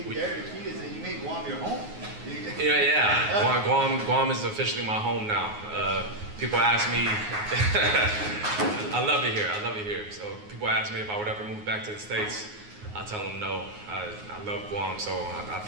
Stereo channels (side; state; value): left; late; 9.5 ms